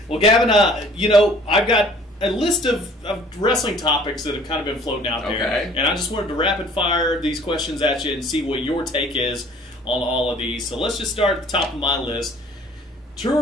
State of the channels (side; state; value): both; normal; correlation 0.53